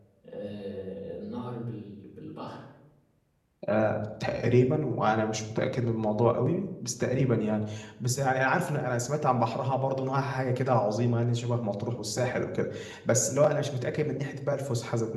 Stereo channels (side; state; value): both; identical; correlation 1.00